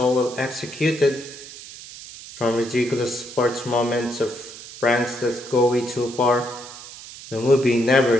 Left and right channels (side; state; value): right; noise; hiss, 15 dB below the sound